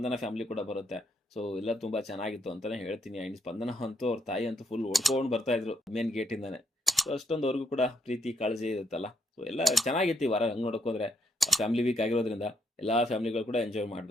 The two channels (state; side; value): normal; both; correlation 0.76